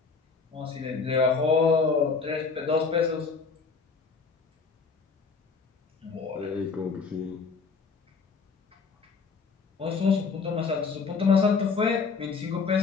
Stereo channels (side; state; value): right; quieter; 4.9 dB